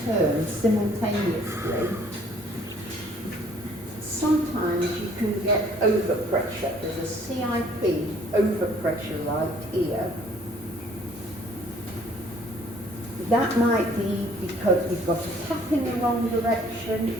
turn simultaneously. Sometimes you can get overpressure. There's a CIP overpressure right here. That might be because we've got a tap in the wrong direction.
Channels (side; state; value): both; normal; correlation 0.59